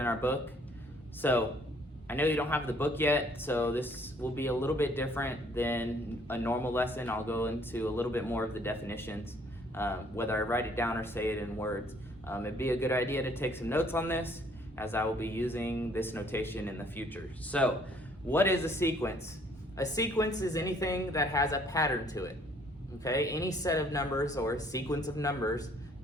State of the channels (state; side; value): normal; both; correlation 0.61